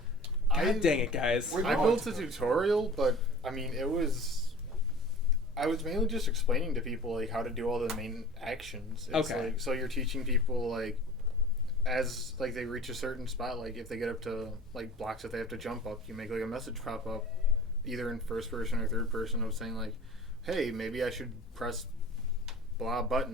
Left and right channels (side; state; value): both; normal; correlation 0.40